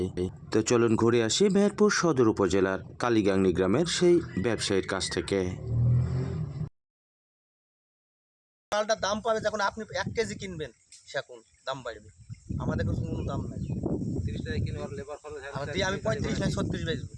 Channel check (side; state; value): both; identical; correlation 1.00